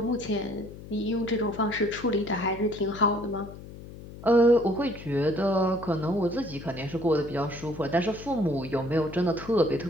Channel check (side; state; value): left; noise; hum, 15 dB below the sound